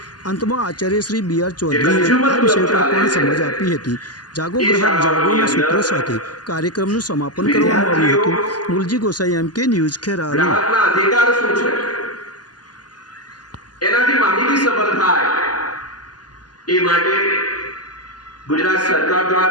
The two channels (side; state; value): right; late; 0.70 ms